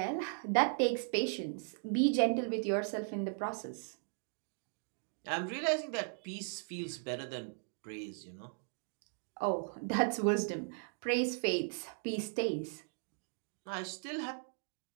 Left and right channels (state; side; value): silent; left; 53 dB below the other